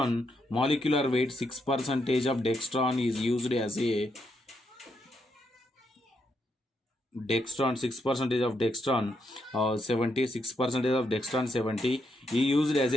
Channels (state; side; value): normal; both; correlation 0.79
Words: molecular weight. 6% of Dextron is used as a Dextron. 6% of Dextron 76% of Dextron 70 is used as